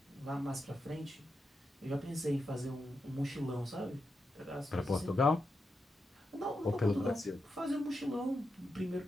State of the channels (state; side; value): normal; both; correlation 0.87